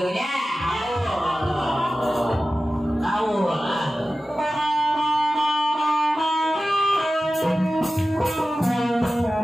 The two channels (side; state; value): both; normal; correlation 0.95